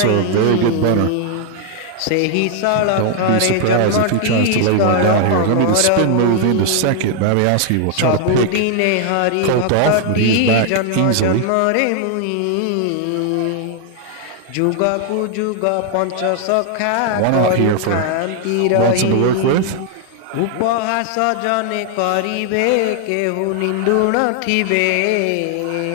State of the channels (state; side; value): different; both; correlation 0.00